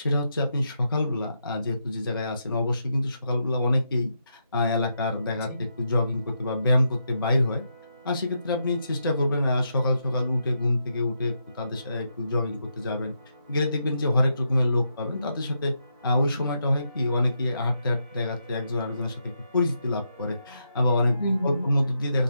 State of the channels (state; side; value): inverted; both; correlation -0.81